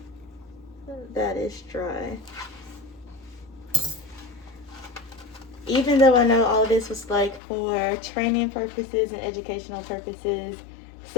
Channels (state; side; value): drops out; right; at 7.4 s